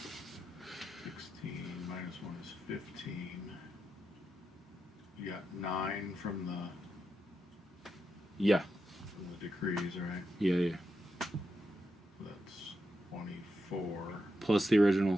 16 minus 1 is 15. You got 9 from the decrees, right? Yeah. That's 24. Plus the original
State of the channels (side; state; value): both; normal; correlation 0.86